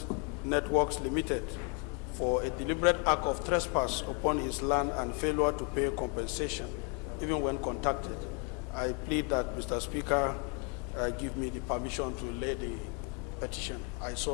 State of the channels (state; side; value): quieter; right; 34.8 dB